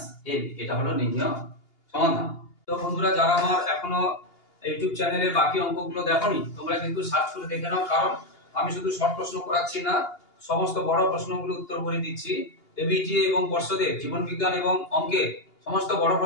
ab। এটা হলো নির্ণয় সমাধান। তো বন্ধুরা, যারা আমার এখনো ইউটিউব চ্যানেলে বাকি অঙ্কগুলো দেখোনি, তোমরা কিন্তু সার্চ করে দেখে নাও, কারণ আমি শুধু শর্ট প্রশ্ন করাচ্ছি না, সমস্ত বড় প্রশ্নগুলো উত্তর করে দিচ্ছি। এবিটি এবং পর্ষদের জীবন বিজ্ঞান এবং অঙ্কের সমস্ত বড়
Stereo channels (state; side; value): late; right; 2.8 ms